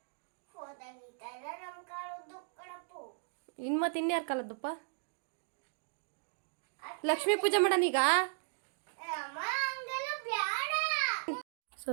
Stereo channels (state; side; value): silent; left; digital silence